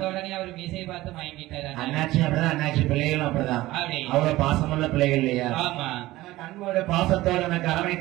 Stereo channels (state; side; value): quieter; left; 17.4 dB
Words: உடனே அவர் மீசையை பார்த்து வாங்கிட்டாரு. அண்ணாச்சி அப்படிதான், அண்ணாச்சி பிள்ளைகளும் அப்படிதான். அவ்வளவு பாசமுள்ள பிள்ளைகள் இல்லையா? அன்போட பாசத்தோடு எனக்கு